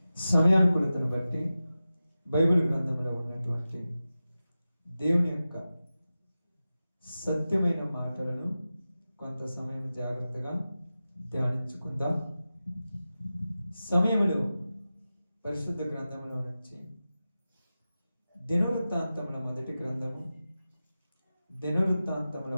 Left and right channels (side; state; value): both; inverted; correlation -0.94